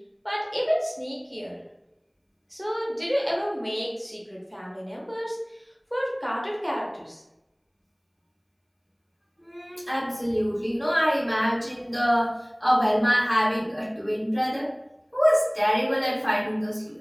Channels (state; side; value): identical; both; correlation 1.00